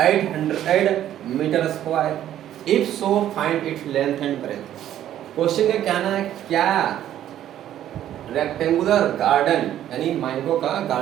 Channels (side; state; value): left; quieter; 11.7 dB